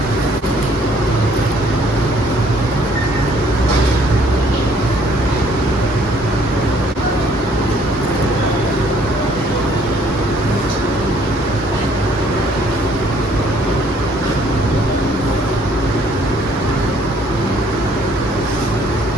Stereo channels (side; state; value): both; normal; correlation 0.62